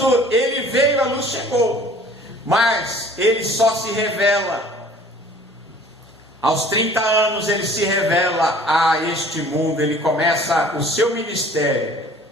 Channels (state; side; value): normal; both; correlation 0.50